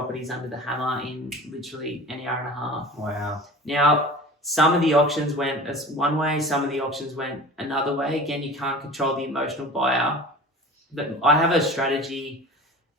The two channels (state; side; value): normal; both; correlation 0.38